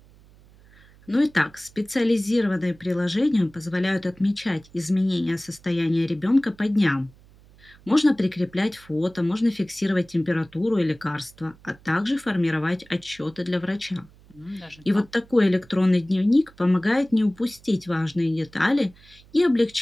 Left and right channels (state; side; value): noise; right; hum, 26 dB below the sound